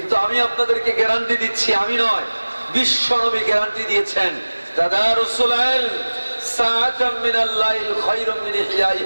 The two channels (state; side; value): inverted; both; correlation -1.00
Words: আমি আপনাদেরকে গ্যারান্টি দিচ্ছি, আমি নয়, বিশ্ব নবী গ্যারান্টি দিয়েছেন, তাদারুসুল ইলম সাআতাম মিনাল লাইল খায়রুম মিন